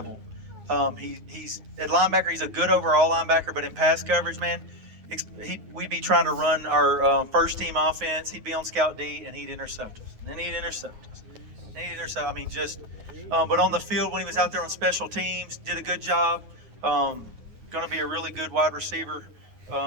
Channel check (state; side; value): late; left; 9.5 ms